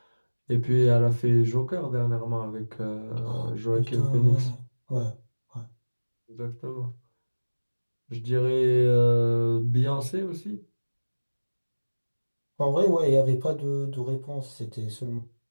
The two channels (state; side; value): inverted; both; correlation -1.00